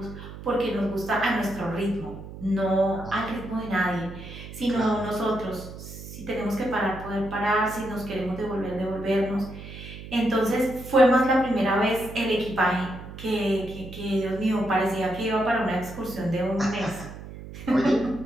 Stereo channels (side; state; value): right; noise; hum, 13 dB below the sound